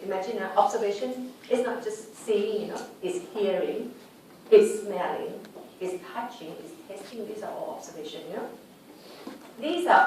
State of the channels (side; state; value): both; identical; correlation 1.00